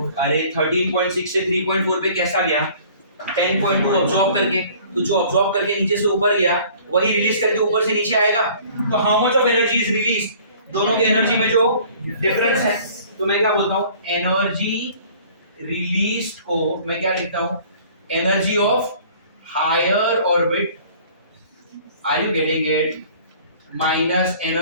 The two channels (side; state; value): both; inverted; correlation -0.51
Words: अरे 13.6 से 3.4 पे कैसा गया? 10.2 अब्सॉर्ब करके, तो जो अब्सॉर्ब करके नीचे से ऊपर गया वही रिलीज करके ऊपर से नीचे आएगा। तो how much of energy is release, दोनों की एनर्जी में जो डिफरेंस है, तो मैं क्या बोलता हूँ, एनर्जी रिलीज को मैं क्या लिखता हूँ, energy of higher orbit, are you getting it, minus